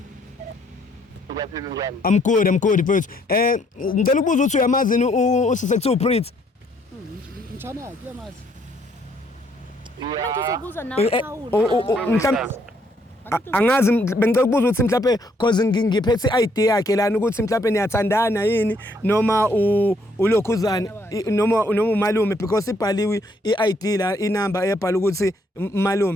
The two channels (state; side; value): normal; both; correlation 0.69